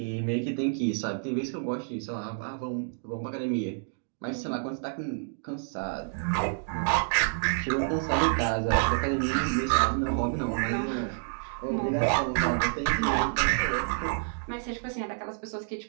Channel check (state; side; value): silent; left; digital silence